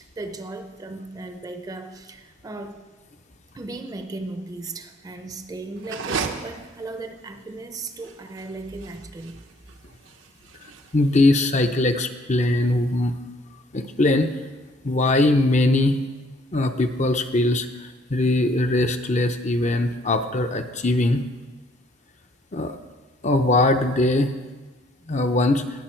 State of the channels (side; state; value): both; normal; correlation 0.62